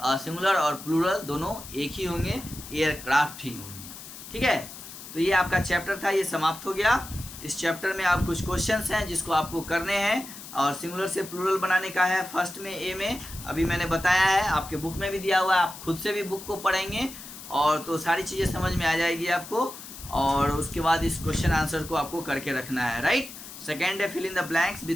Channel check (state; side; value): noise; left; hiss, 14 dB below the sound